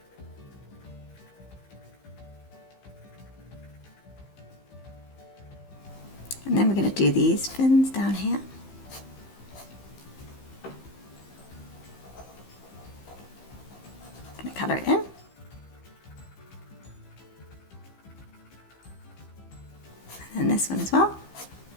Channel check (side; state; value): right; late; 15 ms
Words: And then we're going to do these fins down here. Going to colour it in. And then this one as well.